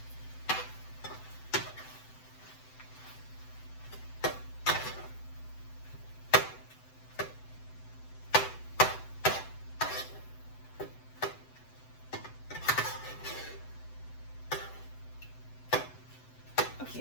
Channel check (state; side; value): late; right; 7.9 ms